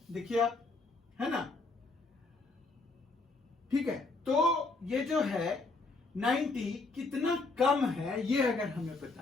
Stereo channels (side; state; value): right; quieter; 3.5 dB